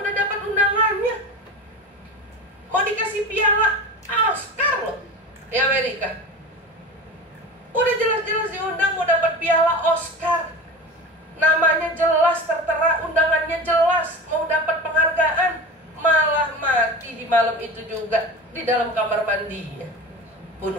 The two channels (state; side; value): normal; both; correlation 0.31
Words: dapat undangannya, mau dikasih piala Oscar loh di Amerika. Udah jelas-jelas diundang mau dapat piala Oscar, namanya jelas tertera, undangannya jelas, mau dapat penghargaan, malah mati di malam itu juga di dalam kamar mandinya,